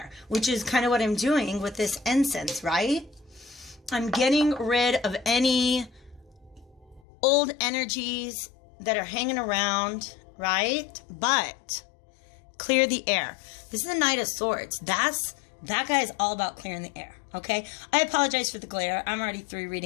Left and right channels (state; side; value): drops out; right; at 7.0 s